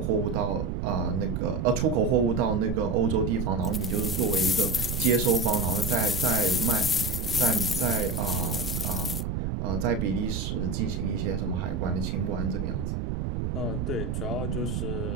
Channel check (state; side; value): noise; right; rumble, 2 dB below the sound